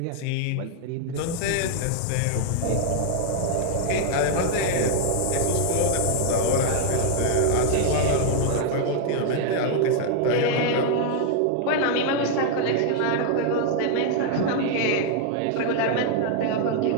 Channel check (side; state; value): both; different; correlation 0.00